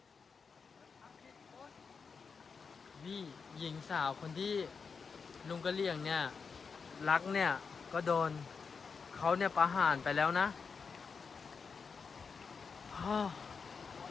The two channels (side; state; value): right; quieter; 5.4 dB